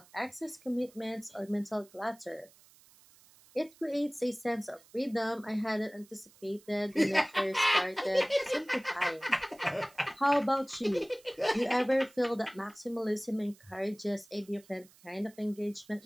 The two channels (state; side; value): noise; right; hiss, 26 dB below the sound